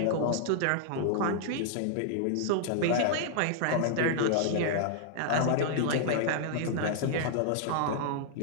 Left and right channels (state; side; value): different; both; correlation -0.01